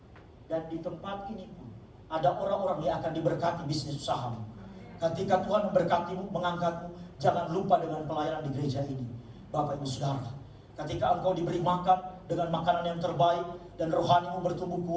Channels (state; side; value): identical; both; correlation 1.00